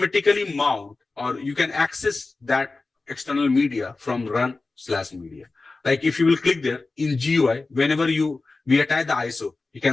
mount, or you can access that external media from run/media. Like if you will click there in GUI, whenever we attach the ISO, you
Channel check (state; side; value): quieter; right; 3.6 dB